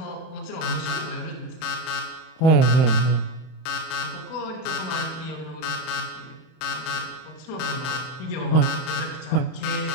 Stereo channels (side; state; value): right; late; 32 ms